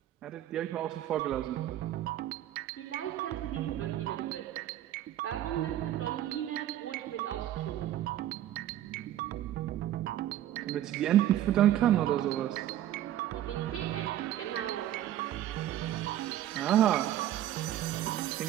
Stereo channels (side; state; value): left; quieter; 12.5 dB